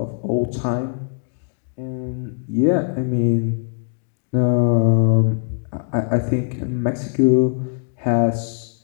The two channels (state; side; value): silent; right; digital silence